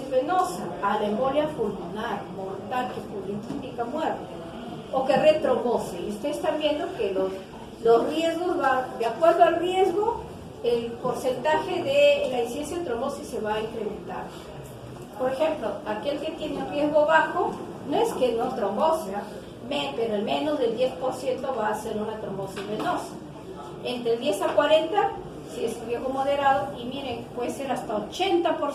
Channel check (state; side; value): identical; both; correlation 1.00